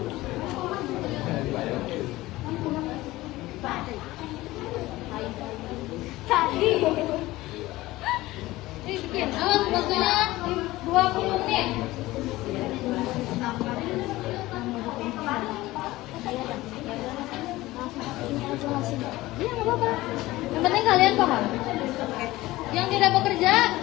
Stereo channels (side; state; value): right; quieter; 18.2 dB